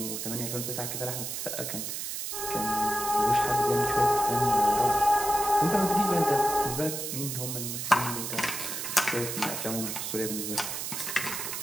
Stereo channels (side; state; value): right; noise; hiss, 4 dB below the sound